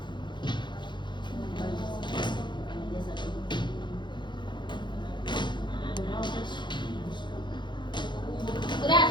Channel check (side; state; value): right; late; 0.22 ms